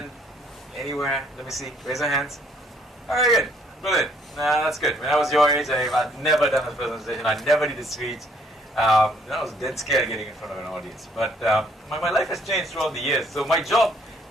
anywhere? Let me see. Raise your hands. Very good. Brilliant. That's good. When I was your age, I've never done a presentation. I never did a speech. I was dead scared getting in front of an audience. But my life has changed throughout the years. So my job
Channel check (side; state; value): both; normal; correlation 0.64